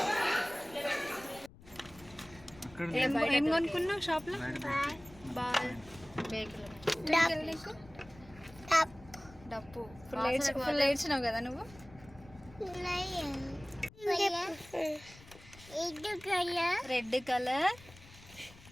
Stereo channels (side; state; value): left; noise; rumble, 21 dB below the sound